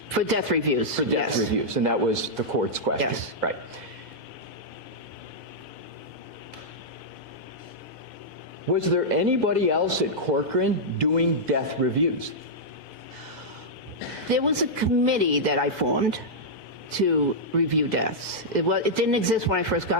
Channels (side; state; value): left; late; 1.9 ms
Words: For death reviews, For death yes. reviews, and that was the court's question. Yes. Right. Was there anybody else at Corcoran doing death reviews? There was a committee that I formed to review deaths. It didn't exist when I first